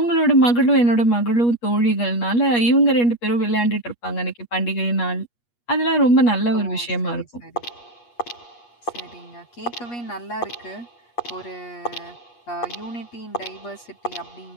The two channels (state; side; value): late; right; 8.4 ms